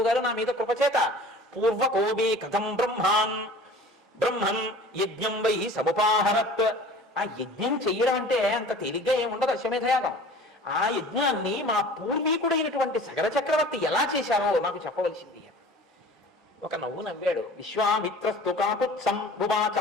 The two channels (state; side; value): normal; both; correlation 0.43